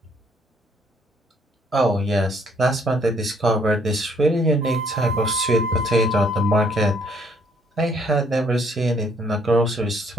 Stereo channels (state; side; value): normal; both; correlation 0.65